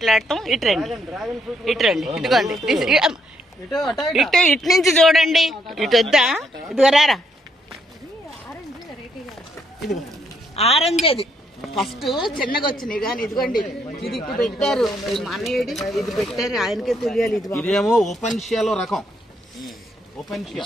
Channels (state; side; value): normal; both; correlation 0.74